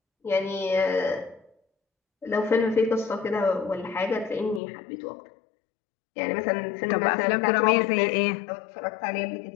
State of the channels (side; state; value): right; drops out; at 4.6 s